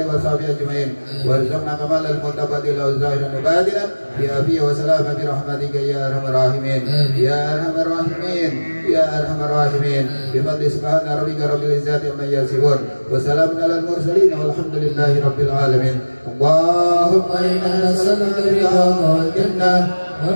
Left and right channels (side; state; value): both; inverted; correlation -1.00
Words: وصحبه أجمعين. وارزقنا كمال المتقبل ظاهرا وباطنا بعافية وسلامة برحمتك يا أرحم الراحمين يا أرحم الراحمين يا أرحم الراحمين. بفضل سبحان ربك رب العزة عما يصفون وسلام على المرسلين والحمد لله رب العالمين. اللهم إنا نسألك رضاك والجنة